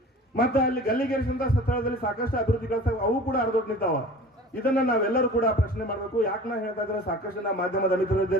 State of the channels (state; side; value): normal; both; correlation 0.41